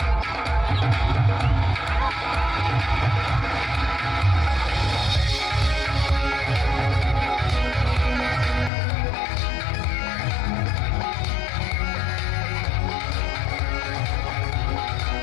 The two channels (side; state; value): right; drops out; at 8.7 s